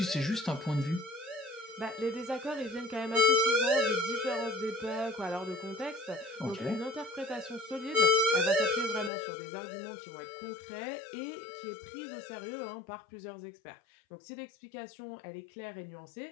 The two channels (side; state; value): right; drops out; at 9.1 s